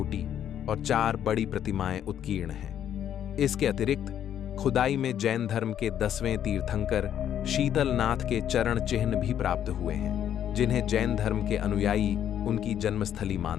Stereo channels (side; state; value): right; quieter; 10.0 dB